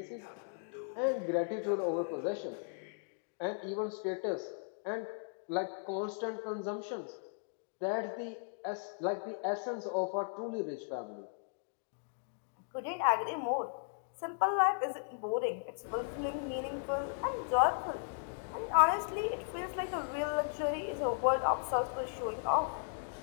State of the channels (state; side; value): silent; right; digital silence